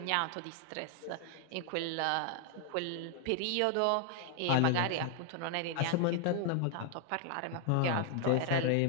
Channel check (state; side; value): different; both; correlation 0.00